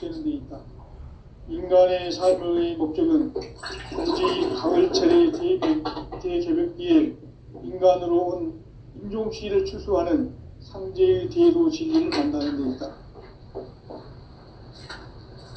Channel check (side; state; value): both; identical; correlation 1.00